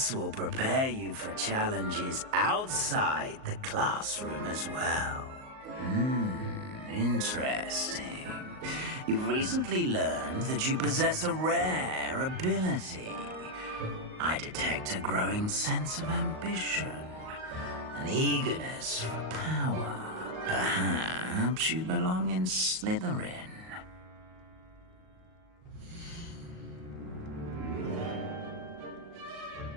will prepare you for challenges outside the classroom as well. Interesting. You've recently learned that you possess a rare ability. I detect a growing sense of ambition, an eagerness for power. Perhaps you belong in Slytherin.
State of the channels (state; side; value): late; left; 38 ms